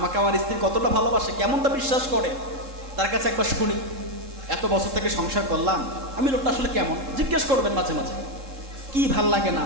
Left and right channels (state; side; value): late; left; 3.7 ms